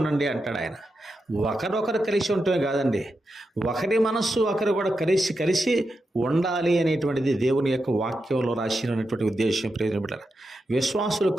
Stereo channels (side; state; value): both; normal; correlation 0.88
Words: అంటాడు ఆయన. ఒకరొకరు కలిసి ఉండటమే కాదండి, ఒకరి మనస్సు ఒకరు కూడా కలిసి ఉండాలి అనేటువంటిది దేవుని యొక్క వాక్యంలో రాసినటువంటి ఉద్దేశం. ప్రియమైన విశ్వాసులు